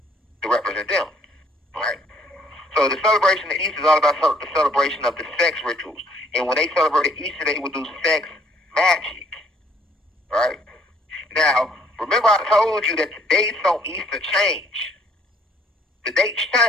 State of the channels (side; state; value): both; normal; correlation 0.62